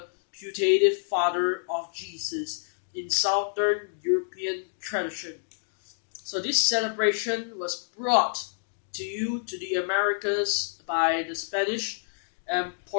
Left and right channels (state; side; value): silent; right; digital silence